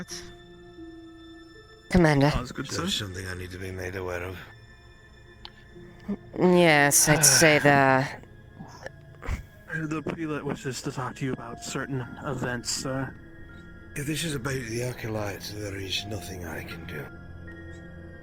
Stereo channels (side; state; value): both; identical; correlation 1.00